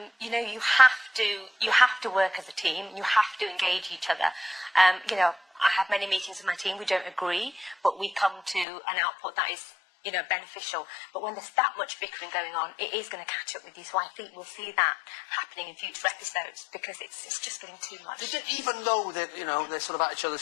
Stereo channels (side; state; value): right; drops out; at 8.7 s